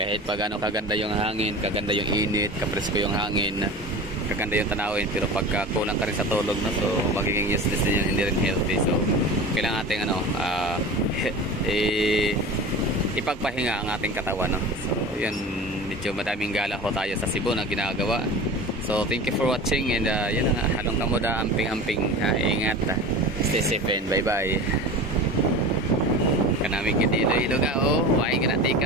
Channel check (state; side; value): normal; both; correlation 0.33